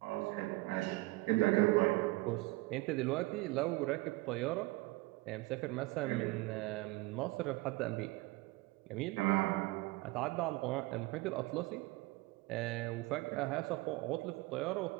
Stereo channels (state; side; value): quieter; left; 21.6 dB